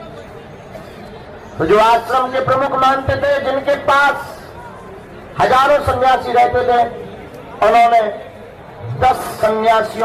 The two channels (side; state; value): both; identical; correlation 1.00